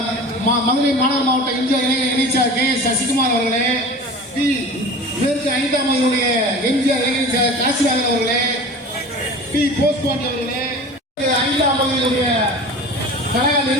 மாநகர மாவட்ட இந்திய இணைச்சார் கே எஸ் சசிகுமார் அவர்களே, பி மேற்கு 5ஆம் வகுதியுடைய எம்ஜிஆர் இளைஞர் காசிராஜன் அவர்களே, பி போஸ்பாண்டி அவர்களே, 5ஆம் வகுதியுடைய கழக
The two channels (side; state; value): both; normal; correlation 0.37